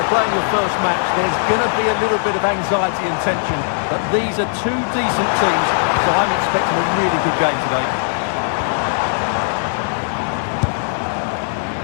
playing your first match, there's going to be a little bit of anxiety and tension. But these are two decent teams, so I'm expecting a really good game today.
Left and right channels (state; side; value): silent; right; 66 dB below the other